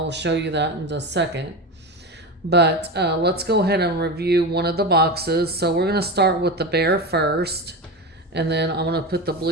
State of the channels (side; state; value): both; normal; correlation 0.22